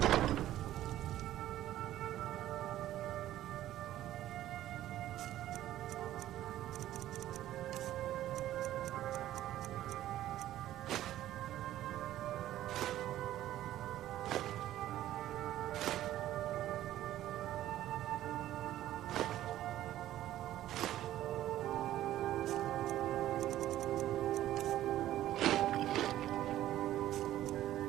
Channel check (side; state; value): left; quieter; 13.4 dB